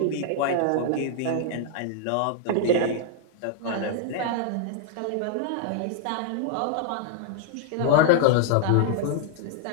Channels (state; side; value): different; both; correlation -0.01